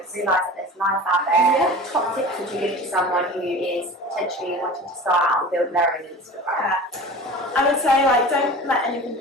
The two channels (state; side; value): normal; both; correlation 0.37